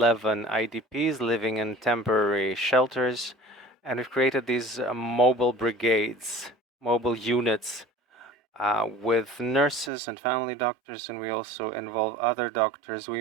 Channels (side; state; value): left; drops out; at 9.9 s